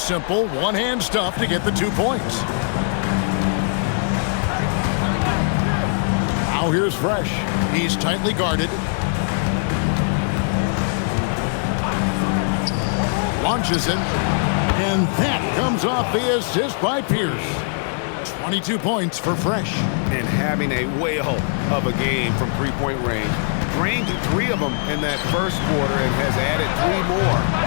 one-hand stuff to get the 2 points. Now here's Fresh. He's tightly guarded. Launches it. And that comes off the assist by Pierce. 22 points for Fresh. And having a whale of a game from three-point range. Drained 3 of them in that first quarter and has added 3 more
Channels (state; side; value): silent; right; digital silence